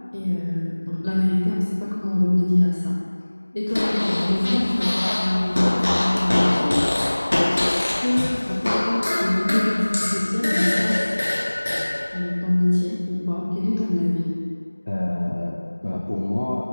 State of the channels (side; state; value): both; inverted; correlation -1.00